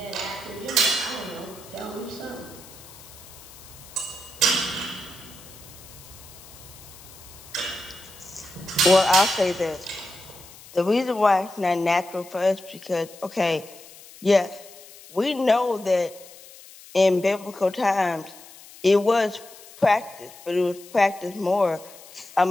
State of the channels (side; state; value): left; noise; hiss, 20 dB below the sound